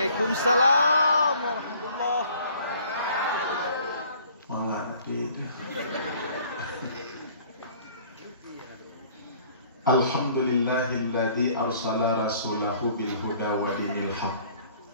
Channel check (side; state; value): both; inverted; correlation -0.55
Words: warahmatullahi. Mengerti. Alhamdulillahilladzi arsala rasulahu bil huda wa dinil haq.